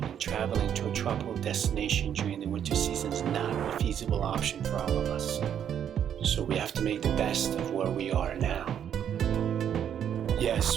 and traveling to a tropical destination during the winter season is not a feasible option for all of us. So we have to make the best of where we are now.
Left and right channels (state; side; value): quieter; left; 9.1 dB